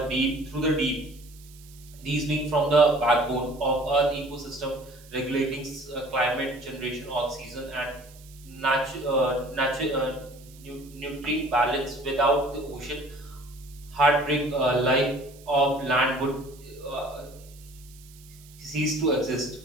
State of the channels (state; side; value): noise; right; hiss, 23 dB below the sound